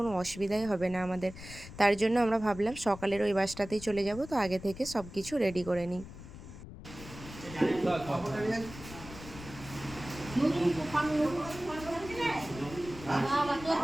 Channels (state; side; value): noise; left; rumble, 14 dB below the sound